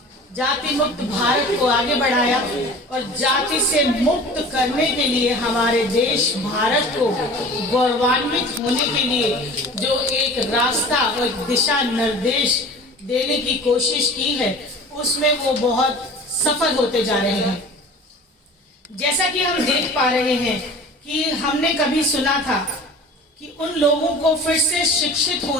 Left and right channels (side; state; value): both; normal; correlation 0.41